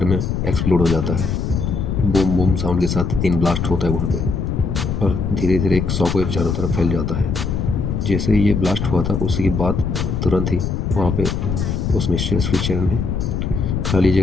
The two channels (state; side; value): noise; left; rumble, 1 dB below the sound